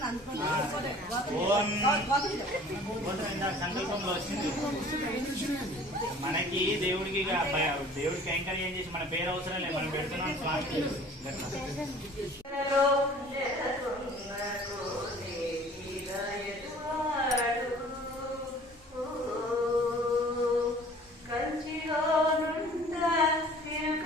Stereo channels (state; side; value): normal; both; correlation 0.49